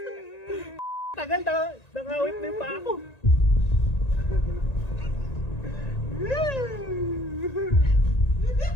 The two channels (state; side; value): late; right; 1.9 ms